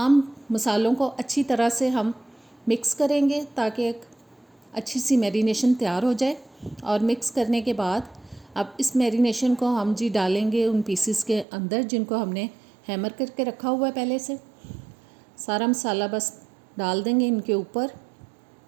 मसालों को अच्छी तरह से हम मिक्स करेंगे ताकि एक अच्छी सी मैरिनेशन तैयार हो जाए। और मिक्स करने के बाद अब इस मैरिनेशन को हम जी डालेंगे उन पीसेस के अंदर जिनको हमने हैमर करके रखा हुआ है पहले से। सारा मसाला बस डाल देंगे इनके ऊपर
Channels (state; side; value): drops out; left; at 11.5 s